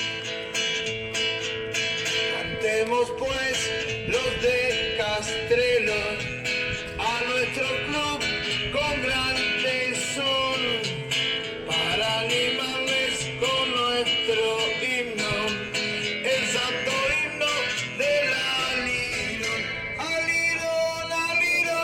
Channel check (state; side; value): identical; both; correlation 1.00